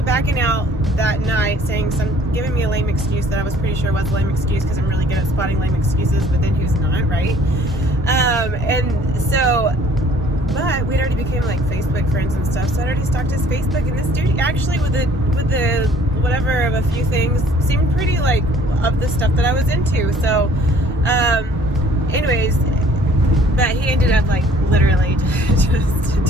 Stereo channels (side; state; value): both; normal; correlation 0.55